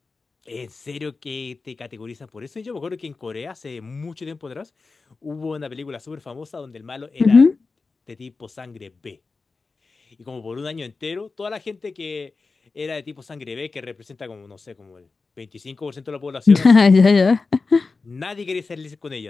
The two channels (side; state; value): right; quieter; 4.1 dB